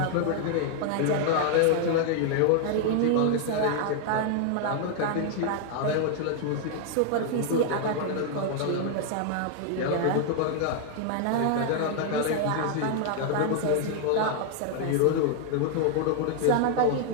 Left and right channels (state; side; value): different; both; correlation 0.00